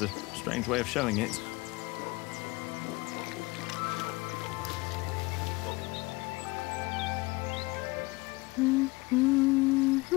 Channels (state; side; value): quieter; right; 22.9 dB